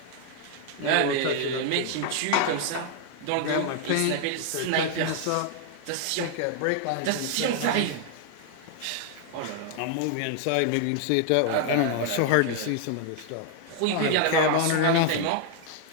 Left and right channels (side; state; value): both; different; correlation 0.00